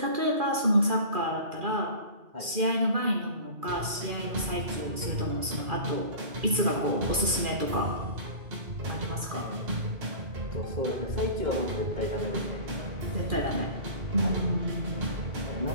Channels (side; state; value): left; late; 2.4 ms